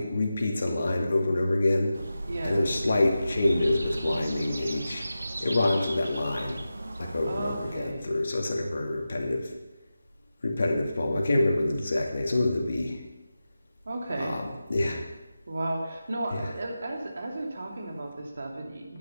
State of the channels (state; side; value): inverted; both; correlation -0.93